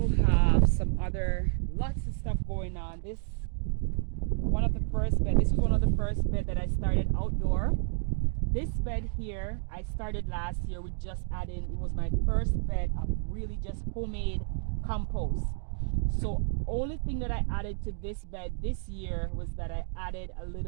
have some other lots of stuff going on. This was one of the first bed that I started outdoor. This bed here I started last year with just adding, it was my first bed of really just homemade compost. So only thing that I added to this bed this year was that I added a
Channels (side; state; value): left; silent; 58 dB below the other